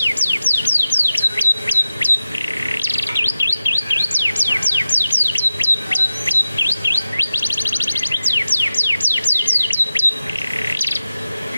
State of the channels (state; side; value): inverted; both; correlation -0.95